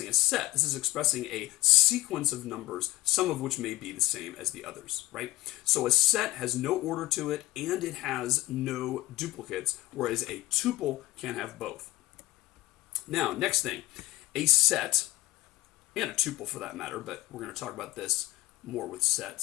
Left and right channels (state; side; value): quieter; right; 18.5 dB